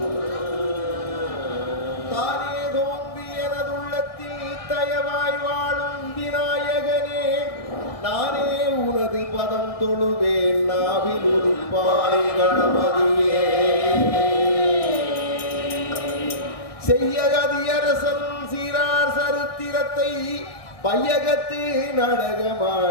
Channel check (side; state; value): right; late; 1.7 ms